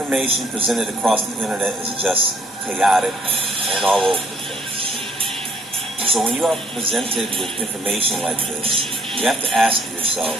presented across the internet is just chaotic and all over the place. So when you are presented with information like this, you have to ask yourself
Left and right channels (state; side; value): normal; both; correlation 0.64